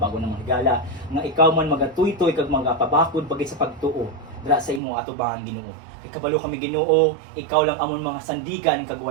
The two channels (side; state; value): left; drops out; at 4.8 s